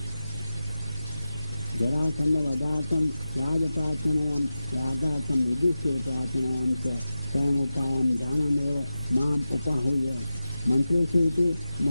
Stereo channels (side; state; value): both; inverted; correlation -0.93